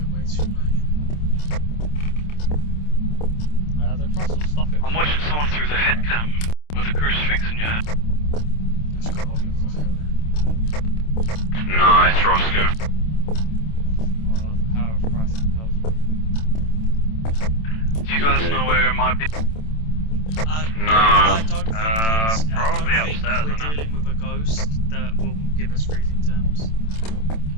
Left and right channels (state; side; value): late; right; 27 ms